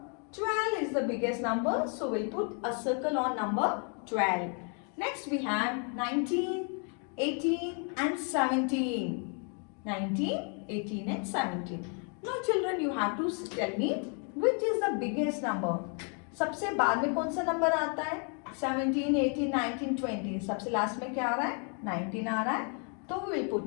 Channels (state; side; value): quieter; right; 39.7 dB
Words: 12 is the biggest number. So we'll put a circle on number 12. Next we have 19, 18 and 17. 19, 18 and 17. Now children, you have to tell me which is the biggest number. सबसे बाद में कौन सा number आता है? 17, 18, 19, 20. सबसे last में क्या आ रहा है? 19 आ रहा है. तो we will